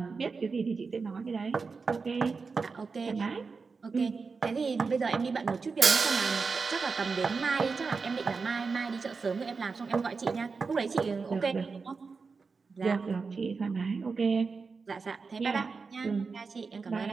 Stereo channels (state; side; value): quieter; left; 4.7 dB